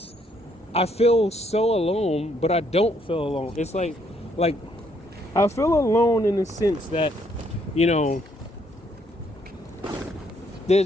I feel so alone, but I don't feel alone. It's like I feel alone in the sense that, there's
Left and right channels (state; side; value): normal; both; correlation 0.70